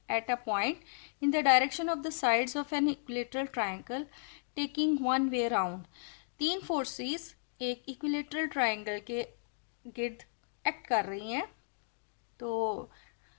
at a point in the direction of the sides of an equilateral triangle taking one way round। तीन फोर्सेस एक इक्विलेटरल ट्राइंगल के गिर्द एक्ट कर रही हैं। तो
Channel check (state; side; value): silent; right; digital silence